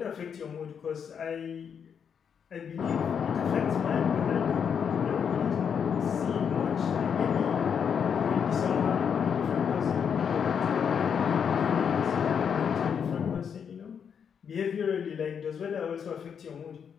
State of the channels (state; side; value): quieter; right; 7.3 dB